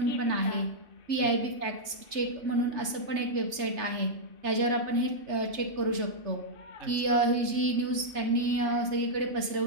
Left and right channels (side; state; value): left; late; 3.3 ms